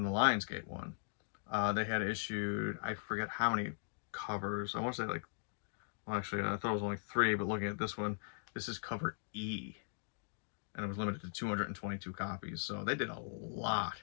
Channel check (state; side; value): silent; right; digital silence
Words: one. They had issued, I forget how many covers. I want to say like, well, actually, I thought it was only 3, but looking at this one, this is cover E, and it was limited to 222 copies. So they did a lot